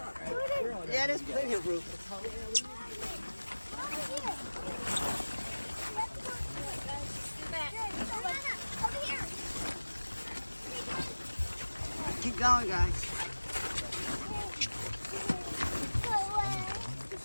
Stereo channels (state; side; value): inverted; both; correlation -1.00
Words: Yeah, there's plenty of room. Keep going, guys.